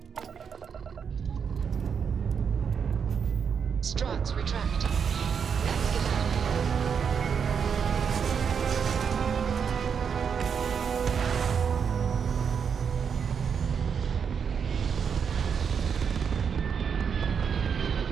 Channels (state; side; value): quieter; left; 6.8 dB